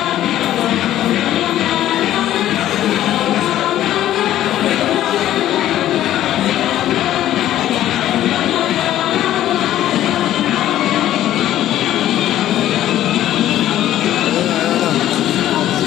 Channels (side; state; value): right; quieter; 12.8 dB